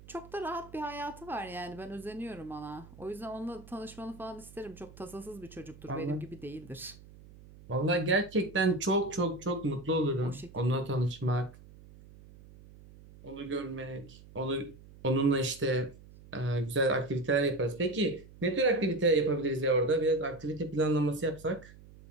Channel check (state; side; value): noise; right; hum, 20 dB below the sound